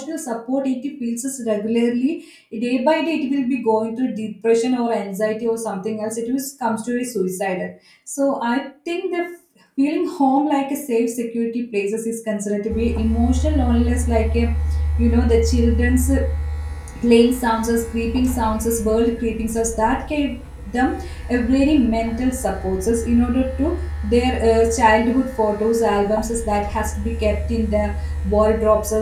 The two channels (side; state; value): both; identical; correlation 1.00